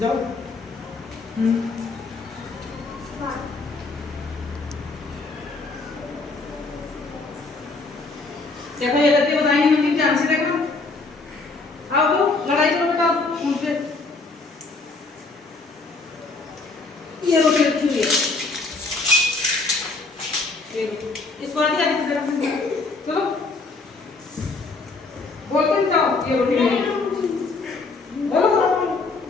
देखो ये गलती बताएंगे मंदिर ध्यान से देखना। आओ तो लड़ाई करो बेटा उनसे। ये रोटी रखी हुई है, ये इसको आगे आगे जरा चलो बोलते जाओ। ये रोटी मेरी बोलो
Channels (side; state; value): right; quieter; 3.8 dB